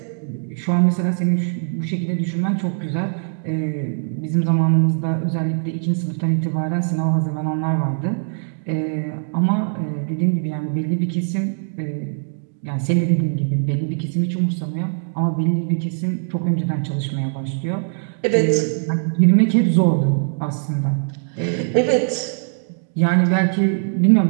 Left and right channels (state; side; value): silent; left; digital silence